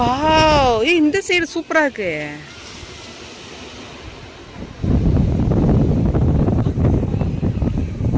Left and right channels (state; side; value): identical; both; correlation 1.00